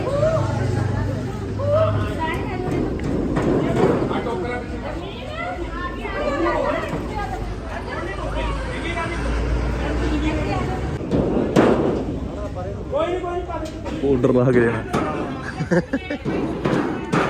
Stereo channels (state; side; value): identical; both; correlation 1.00